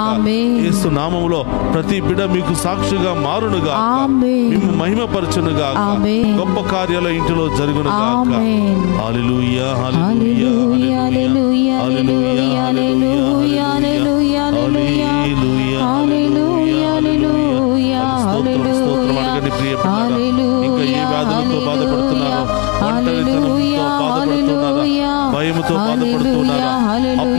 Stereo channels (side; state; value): right; quieter; 27.5 dB